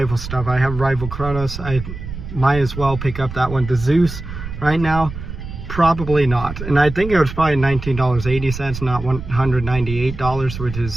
stuff. I have rival Kronos. I might as well pick up that one. The Zeus, right now, Probably not. And I think it was probably $19.80, not $198, which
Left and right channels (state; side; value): noise; right; rumble, 9 dB below the sound